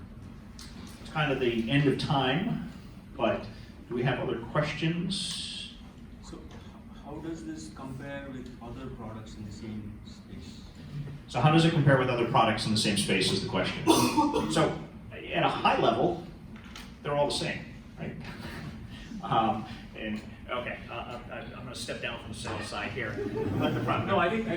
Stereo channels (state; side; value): identical; both; correlation 1.00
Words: it's kind of the end of time, but do we have other questions? So how does this compare with other products in the same space? So how does it compare with other products in the same space is the question. So at a high level, they're all the same, right? And okay, I'm gonna step down from the sales side here. Let the product. No, I think